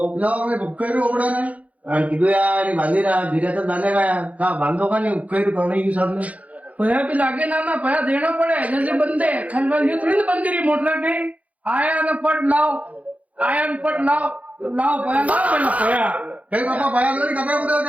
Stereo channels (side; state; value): left; late; 0.069 ms